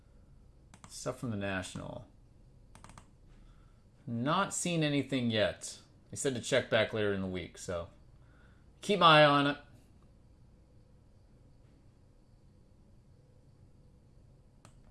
stuff from the National. Not seen anything yet. They said to check back later in the week, so keep my eye on it.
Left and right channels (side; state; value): both; identical; correlation 1.00